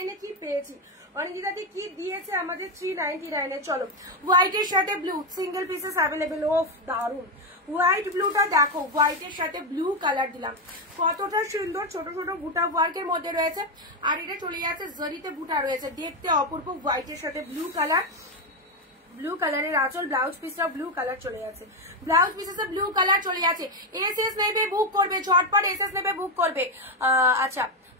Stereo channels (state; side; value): normal; both; correlation 0.08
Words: এ কি পেয়েছি। অনিন্দিতাদি কি দিয়েছে আমাদের 399 এ। চলো হোয়াইটের সাথে ব্লু, সিঙ্গেল পিসেস অ্যাভেলেবেল, ওফ দারুন। হোয়াইট ব্লুটা দেখো, হোয়াইটের সাথে ব্লু কালার দিলাম, কতটা সুন্দর, ছোট ছোট বুটা ওয়ার্কের মধ্যে রয়েছে। আর এটা চলে যাচ্ছে জরিতে বুটা রয়েছে, দেখতে অপূর্ব। হোয়াইটের সাথে ব্লু কালার, ব্লু কালারের আঁচল, ব্লাউজ পিসটা ব্লু কালার চলে যাচ্ছে, ব্লাউজ পিসে ব্লু কালার চলে যাচ্ছে। এসএস নেবে বুক করবে, ঝটপট এসএস নেবে বুক করবে। আচ্ছা